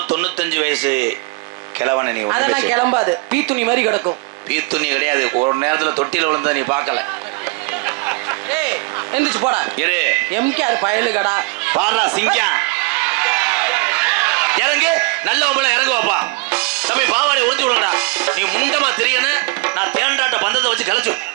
வயசு கிழவன நீ. அதெல்லாம் கிளம்பாது. பீத்துணி மாதிரி கிடக்கும். பீத்துணி கிடையாது. ஒரு நேரத்துல தொட்டில விழுந்தா நீ பார்க்கல. ஏய் எந்திரிச்சு போடா. இரு எம்கேஆர் பயலுகடா. பாடுறா சிங்கம். இறங்கு. நல்ல ஒம்பளை இறங்கு வாப்பா. தம்பி பாவாடை உறிஞ்சு விடுங்கடா. நீ முண்டமா தெரியணும். நான் தேண்டாட்ட பந்தத்தை வச்சு கலைச்சு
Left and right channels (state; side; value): quieter; left; 28.7 dB